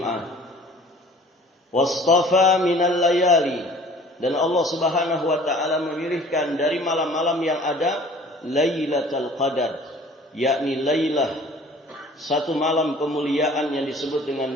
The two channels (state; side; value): normal; both; correlation 0.49